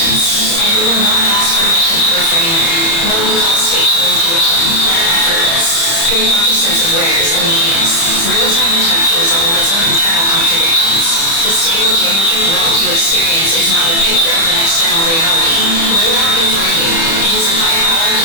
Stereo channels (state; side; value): late; right; 30 ms